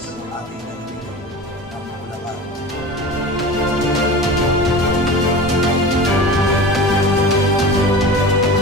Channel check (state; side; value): normal; both; correlation 0.33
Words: ng ating lalawigan ng Bulacan.